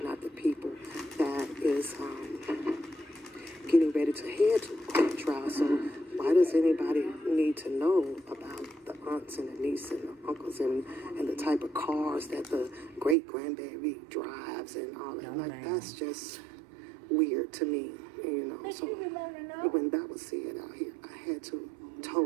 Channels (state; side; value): drops out; left; at 13.2 s